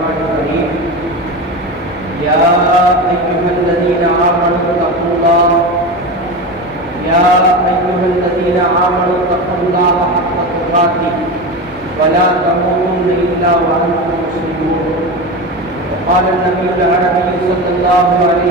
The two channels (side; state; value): both; normal; correlation 0.23